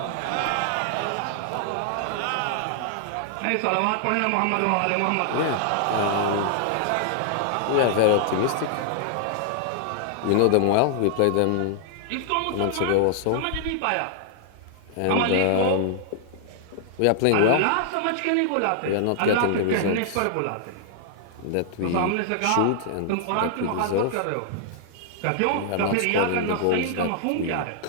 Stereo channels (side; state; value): both; different; correlation -0.01